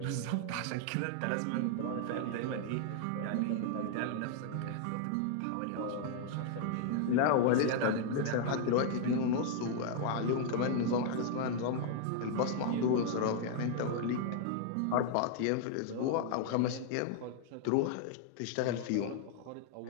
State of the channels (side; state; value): both; different; correlation 0.00